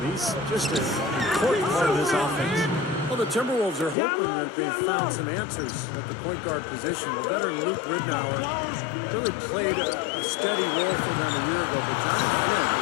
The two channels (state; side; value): drops out; right; at 4.0 s